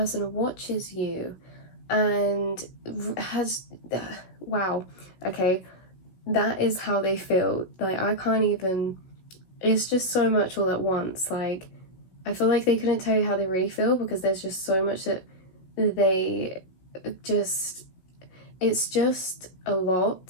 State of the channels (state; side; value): late; right; 16 ms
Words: watches you and has, wow, okay, that is how they feel. Like, I can't even, it's just so much all at once. Like, I feel like they couldn't tell you how they really feel, because there's just so much that they just, it's just a